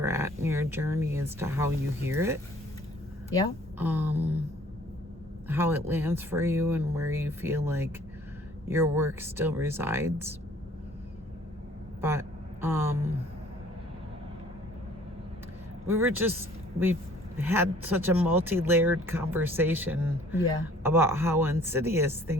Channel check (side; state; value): both; normal; correlation 0.55